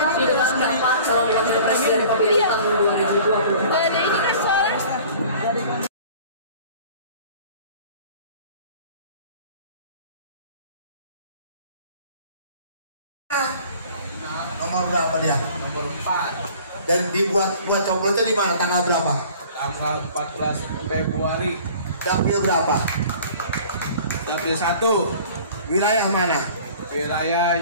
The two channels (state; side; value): inverted; both; correlation -0.47